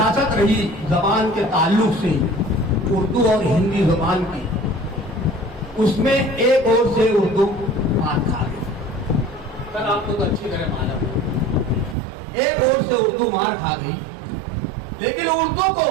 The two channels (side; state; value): left; drops out; at 12.0 s